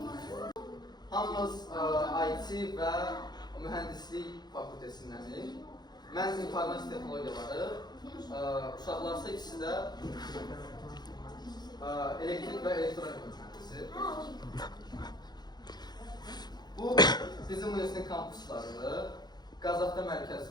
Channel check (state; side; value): late; right; 0.20 ms